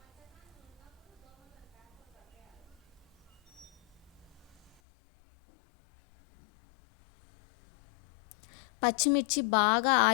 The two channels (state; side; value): drops out; right; at 4.8 s